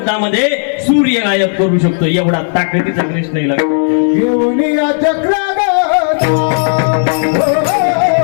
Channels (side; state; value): right; silent; digital silence